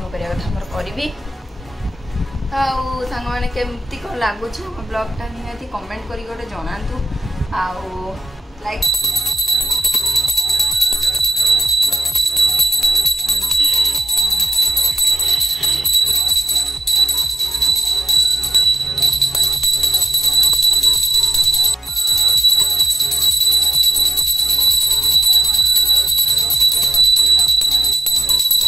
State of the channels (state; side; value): normal; both; correlation 0.90